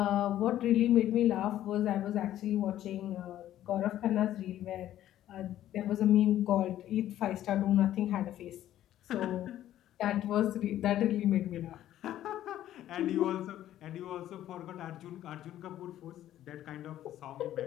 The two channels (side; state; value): right; quieter; 12.6 dB